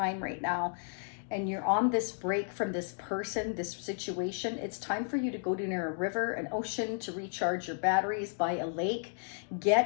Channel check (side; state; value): right; silent; digital silence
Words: right now, and you're on this break from this person, this situation, it's time for you to go to near a river, an ocean, to recharge your batteries, by a lake.